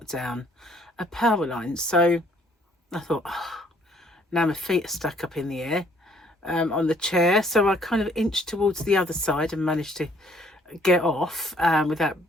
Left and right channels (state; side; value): normal; both; correlation 0.63